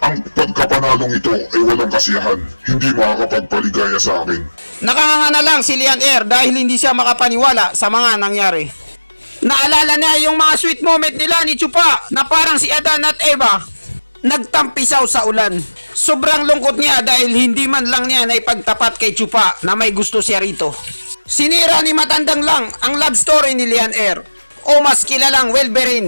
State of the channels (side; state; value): both; inverted; correlation -1.00